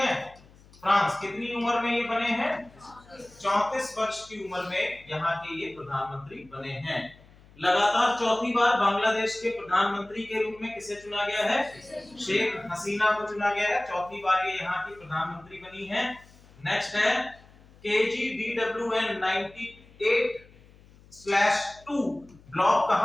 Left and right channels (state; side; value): noise; left; hum, 25 dB below the sound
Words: फ्रांस कितनी उम्र में ये बने हैं? 34 वर्ष की उम्र में यहाँ के ये प्रधानमंत्री बने हैं। लगातार 4थी बार बांग्लादेश के प्रधानमंत्री के रूप में किसे चुना गया है? शेख हसीना को चुना गया है। 4थी बार ये यहाँ की प्रधानमंत्री बनी है। नेक्स्ट है KGDWN 98/2 ब्लॉक